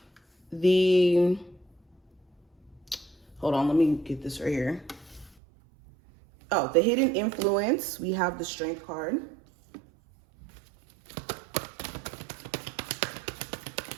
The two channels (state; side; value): drops out; left; at 5.4 s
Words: Hold on, let me get this right here. Oh, the hidden influence, we have the Strength card.